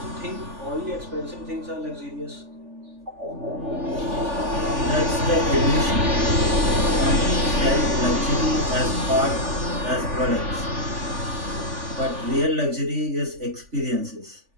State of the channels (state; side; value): late; left; 3.5 ms